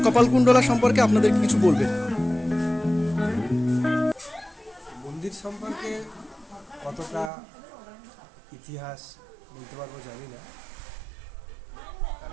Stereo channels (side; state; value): left; drops out; at 7.3 s